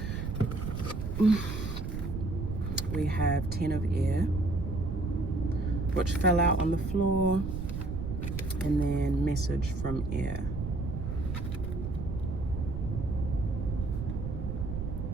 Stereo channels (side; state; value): right; noise; rumble, 4 dB below the sound